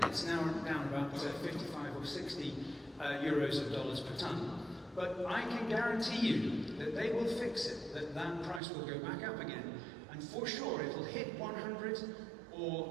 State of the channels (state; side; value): drops out; left; at 8.6 s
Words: It's now down about 55 or 60 euros of dollars per tonne. But I can guarantee you that they will fix it, that price will go back up again, and for sure it will hit 100